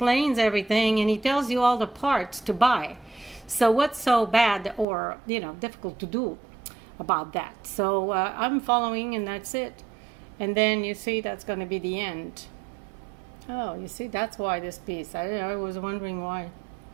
everything, and he tells you all the parts to buy. So what's so bad or, you know, difficult to do about that? So I'm following, and that's it. And then you see, that's going to be the end. Oh, you see, that's why this piece. I was wondering why.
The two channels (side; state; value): left; drops out; at 4.9 s